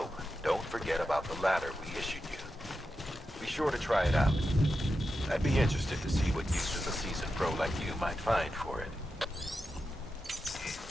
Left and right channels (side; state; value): both; normal; correlation 0.90